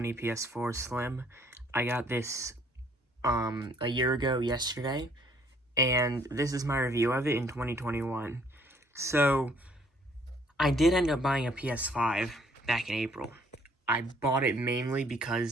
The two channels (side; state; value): both; normal; correlation 0.62